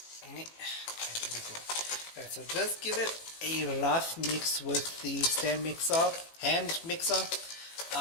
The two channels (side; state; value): right; late; 18 ms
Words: Okay, here we go. Alright, so just give it a rough mix with the hand mixer.